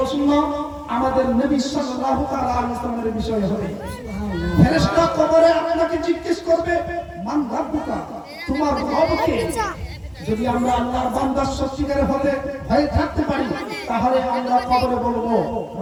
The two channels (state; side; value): identical; both; correlation 1.00